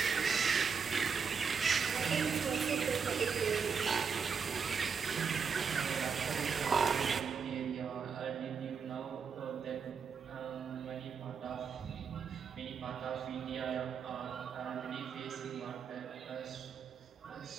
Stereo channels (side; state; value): left; quieter; 6.1 dB